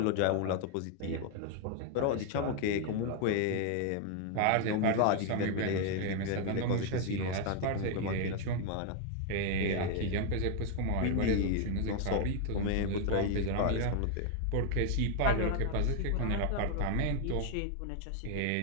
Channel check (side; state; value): both; different; correlation 0.00